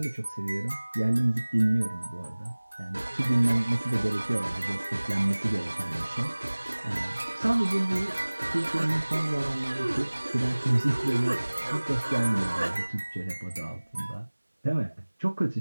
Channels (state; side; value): inverted; both; correlation -1.00